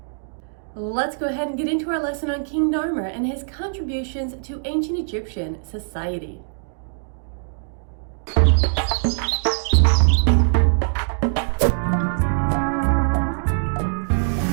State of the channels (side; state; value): left; silent; digital silence